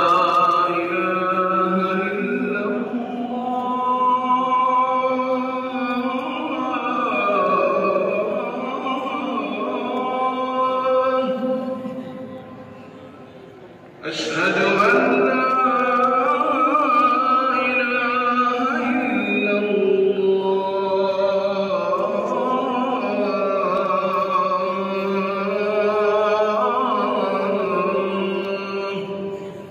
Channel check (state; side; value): identical; both; correlation 1.00